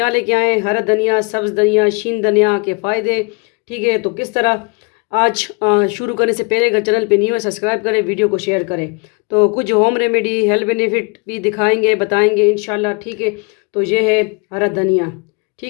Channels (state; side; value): quieter; right; 32.7 dB